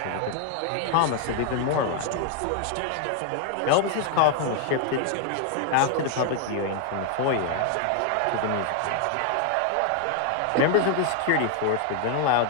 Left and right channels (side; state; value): both; different; correlation 0.00